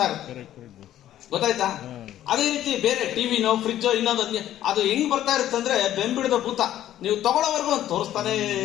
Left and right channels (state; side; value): quieter; right; 12.4 dB